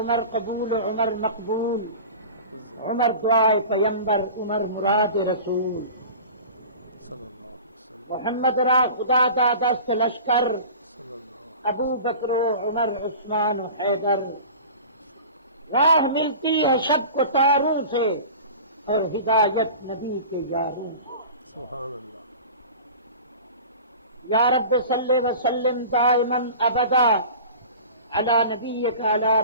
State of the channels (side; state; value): both; inverted; correlation -0.38